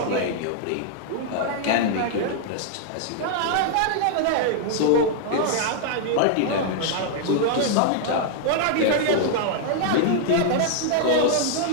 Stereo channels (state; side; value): different; both; correlation -0.01